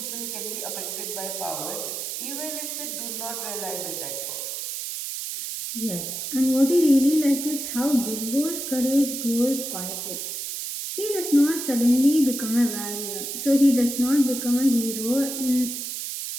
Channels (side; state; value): right; noise; hiss, 5 dB below the sound